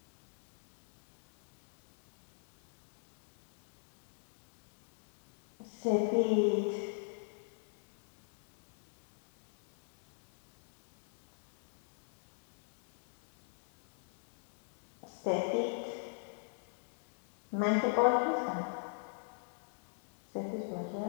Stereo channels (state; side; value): silent; right; digital silence